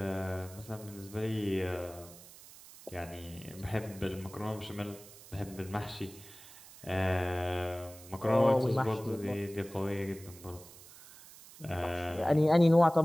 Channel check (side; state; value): right; noise; hiss, 19 dB below the sound